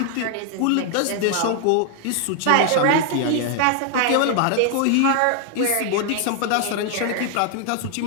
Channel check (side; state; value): both; different; correlation 0.00